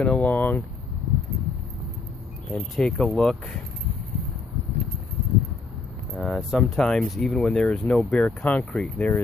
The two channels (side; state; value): right; quieter; 4.0 dB